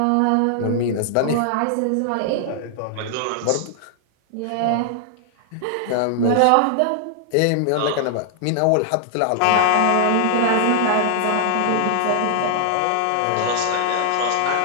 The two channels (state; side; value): different; both; correlation -0.01